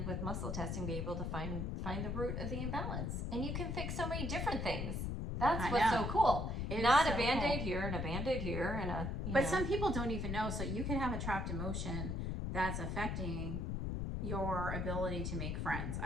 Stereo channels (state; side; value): noise; left; rumble, 1 dB below the sound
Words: with muscle testing be able to find the root of the imbalance? And you can fix so many different things. That's what's so cool. Not a Band-Aid here and a Band-Aid here and a, but some people don't even know. So you can have a trapped emotion that's affecting your ability to make friends.